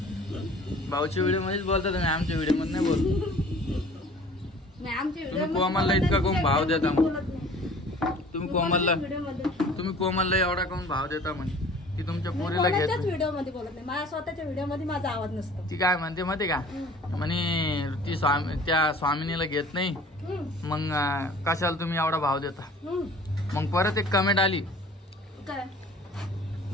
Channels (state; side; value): normal; both; correlation 0.48